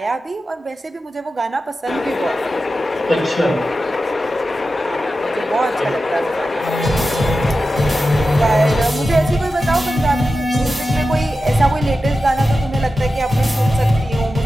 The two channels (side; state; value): both; normal; correlation 0.92